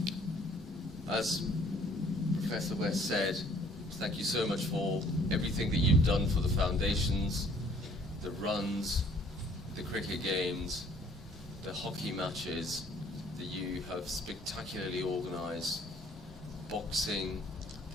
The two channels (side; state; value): both; normal; correlation 0.59